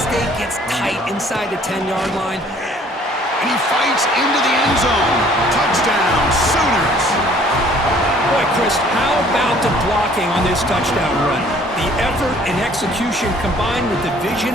gets tight inside the 10-yard line. And he fights into the end zone. Touchdown, Sooners. Boy, Chris, how about the blocking on this touchdown run? The effort and execution combined with the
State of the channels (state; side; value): normal; both; correlation 0.56